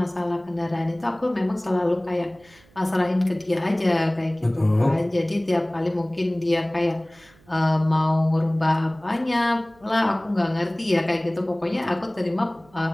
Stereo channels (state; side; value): noise; right; hum, 29 dB below the sound